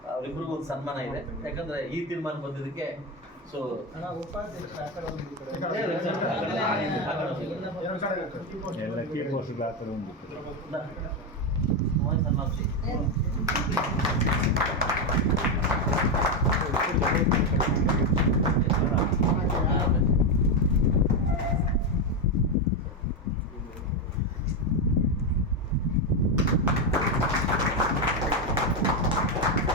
ಅವರಿಬ್ಬರಿಗೂ ಒಂದು ಸನ್ಮಾನ ಇದೆ. ಯಾಕಂದ್ರೆ ಈ ತೀರ್ಮಾನ ಬಂದಿದ್ದಕ್ಕೆ. ಸೊ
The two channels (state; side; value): normal; both; correlation 0.09